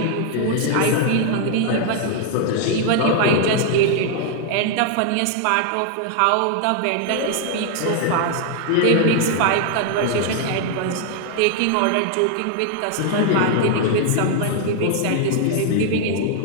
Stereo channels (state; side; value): different; both; correlation 0.00